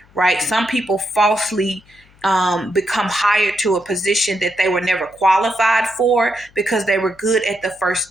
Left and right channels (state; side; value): noise; left; hum, 29 dB below the sound